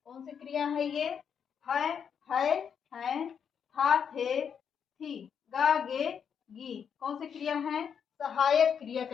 कौन सी क्रिया है ये? है, था, थे, थी, गा, गे, गी। कौन सी क्रिया है? सहायक क्रिया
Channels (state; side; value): quieter; right; 7.4 dB